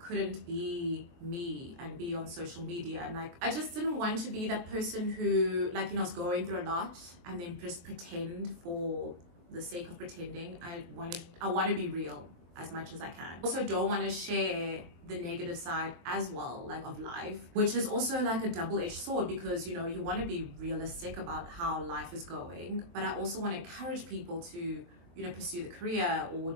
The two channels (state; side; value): late; left; 23 ms